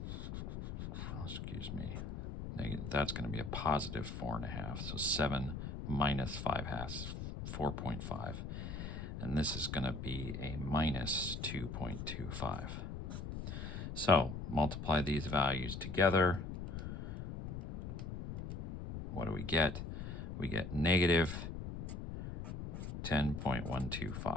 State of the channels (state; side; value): noise; left; rumble, 6 dB below the sound